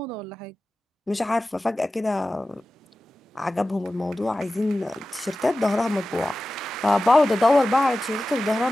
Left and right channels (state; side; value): normal; both; correlation 0.95